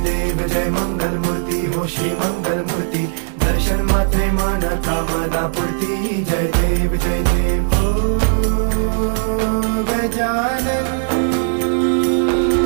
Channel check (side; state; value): left; silent; digital silence